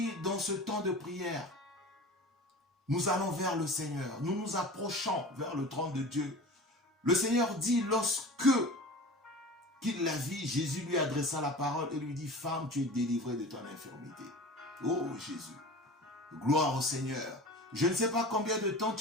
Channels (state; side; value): normal; both; correlation 0.36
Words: dans ce temps de prière, nous allons vers le Seigneur. Nous nous approchons vers le trône de Dieu. Le Seigneur dit, lorsque qu'il la vit, Jésus lui adressa la parole et lui dit, femme, tu es délivrée de ton infirmité. Oh Jésus, gloire au Seigneur. Je ne sais pas combien de temps